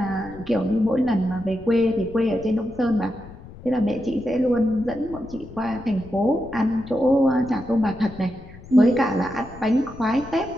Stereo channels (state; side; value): noise; left; rumble, 17 dB below the sound